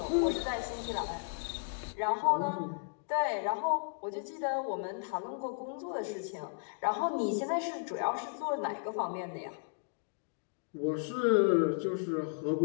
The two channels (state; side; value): silent; right; digital silence